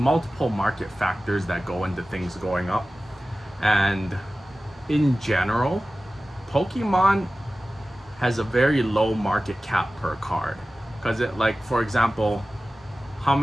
market factors that go into things going up. And in general, Pokemon has a very low market cap per card. Because for example, how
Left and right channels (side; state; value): both; normal; correlation 0.96